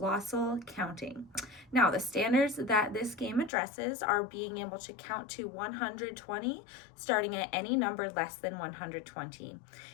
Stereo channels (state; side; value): drops out; right; at 3.5 s